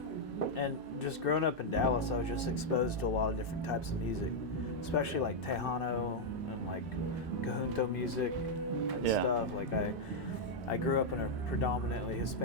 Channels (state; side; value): normal; both; correlation -0.03